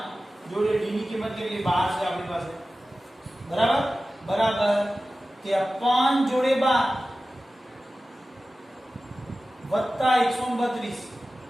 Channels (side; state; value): both; normal; correlation 0.95